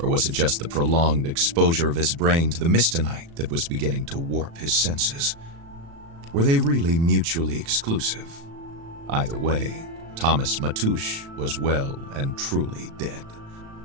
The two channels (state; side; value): late; left; 36 ms